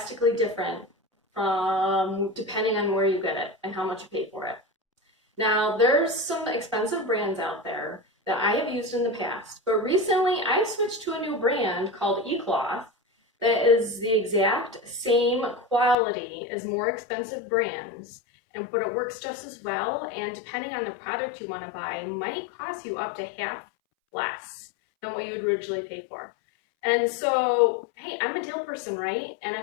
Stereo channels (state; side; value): drops out; right; at 16.0 s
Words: different from depending on where you get it and how much you pay for it. Now, there's some expensive brands out there that I have used in the past, but recently I switched to a new brand called E-Cloth that is the exact same quality as more expensive brands, but it works just as well, and depending on the product you want to buy, might cost you up to half less than what you would originally pay for. And so, hey, I'm a deal person, right? And